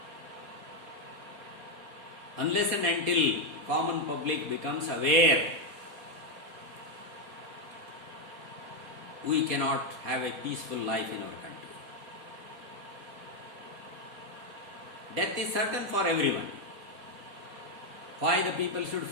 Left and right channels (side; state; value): left; late; 4.2 ms